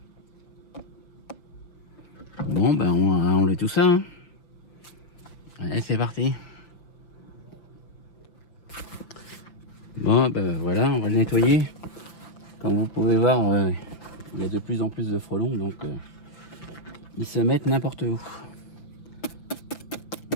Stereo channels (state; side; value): late; right; 5.9 ms